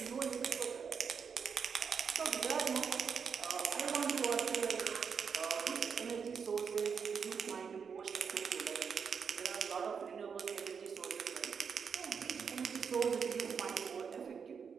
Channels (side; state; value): left; quieter; 6.3 dB